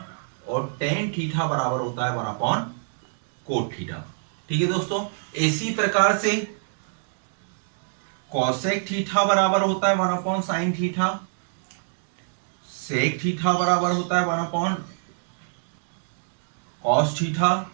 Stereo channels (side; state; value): left; silent; digital silence